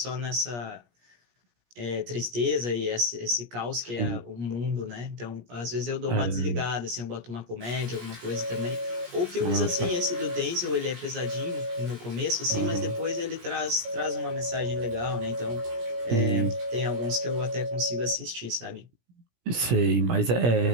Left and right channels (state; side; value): late; left; 17 ms